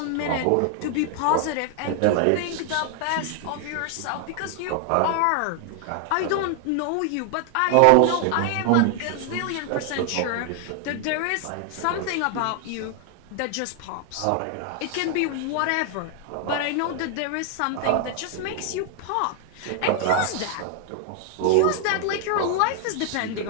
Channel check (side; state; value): both; different; correlation 0.00